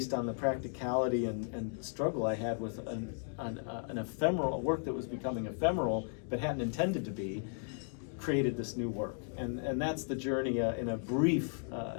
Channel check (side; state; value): right; silent; 54 dB below the other